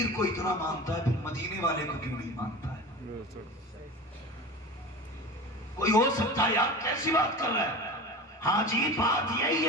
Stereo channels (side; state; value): both; normal; correlation 0.32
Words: को इतना मानता है, फिर मदीने वाले को क्यों नहीं मानता है? कोई हो सकता है यार, कैसी बात कर रहा है? हाँ जी, बात यही